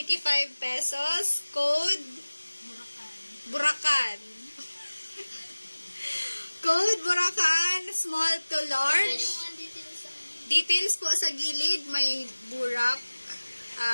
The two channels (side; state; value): both; inverted; correlation -1.00